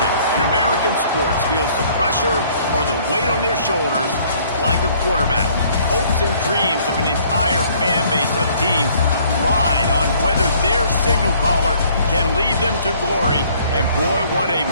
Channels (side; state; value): both; inverted; correlation -0.59